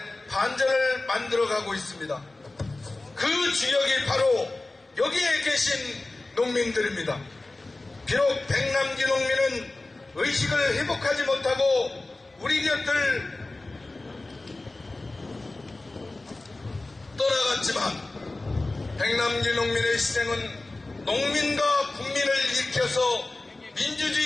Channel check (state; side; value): quieter; right; 3.0 dB